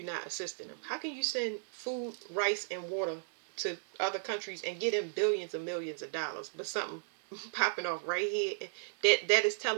not assisting them. How can you send food, rice, and water to other countries and get them billions and millions of dollars, but something popping off right here that is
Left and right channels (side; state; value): left; silent; 55 dB below the other